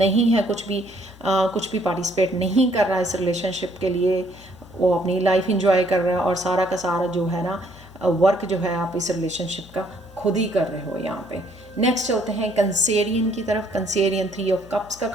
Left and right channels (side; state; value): left; noise; hum, 22 dB below the sound